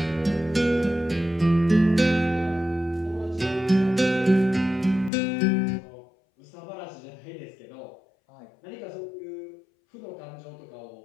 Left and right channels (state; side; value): drops out; right; at 5.1 s